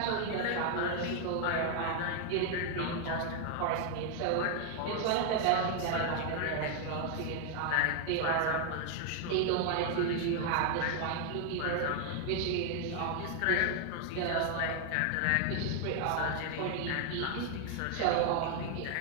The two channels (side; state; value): both; different; correlation 0.00